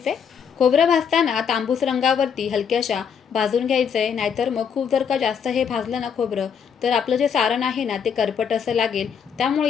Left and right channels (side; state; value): right; quieter; 7.2 dB